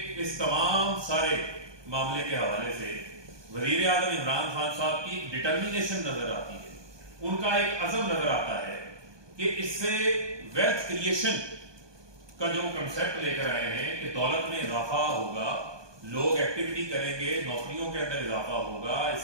इस तमाम सारे मामले के हवाले से वज़ीर आज़म इमरान खान साहब की डिटर्मिनेशन नजर आती है, उनका एक अज़म नजर आता है कि इससे वेल्थ क्रिएशन का जो कंसेप्ट लेकर आए हैं कि दौलत में इजाफा होगा, लोग एक्टिविटी करेंगे, नौकरियों के अंदर इजाफा होगा,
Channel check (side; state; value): left; late; 1.2 ms